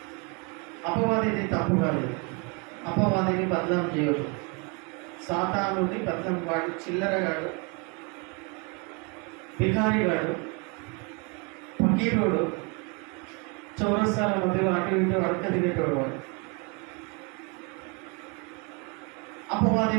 అపవాదిని తప్పు కాదు, అపవాదిని బదనాం చేయదు, సాతానుని బదనాం, వాడు చిల్లరగాడు, బికారిగాడు, ఫకీరుడు, చౌరస్తాల మధ్యలో అటు ఇటు అడక తినేటోడు వాడు. అపవాది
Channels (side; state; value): left; quieter; 32.2 dB